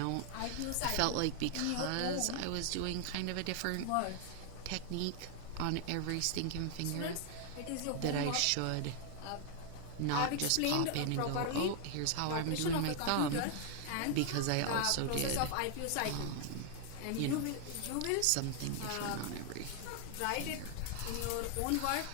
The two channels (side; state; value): both; different; correlation 0.00